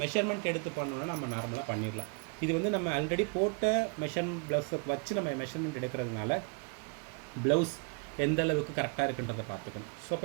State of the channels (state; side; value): quieter; left; 38.1 dB